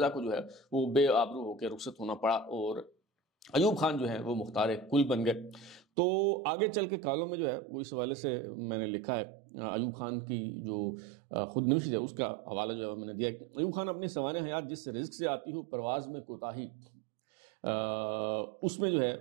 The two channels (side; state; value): left; drops out; at 5.8 s